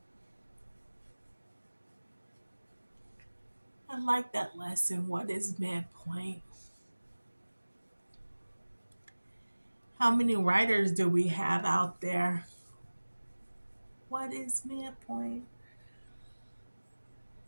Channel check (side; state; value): both; inverted; correlation -1.00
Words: I like that lesson. What is midpoint? How many writers do we have out there? What is midpoint?